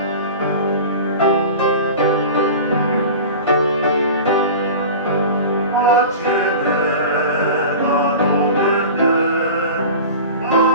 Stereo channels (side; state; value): both; inverted; correlation -0.34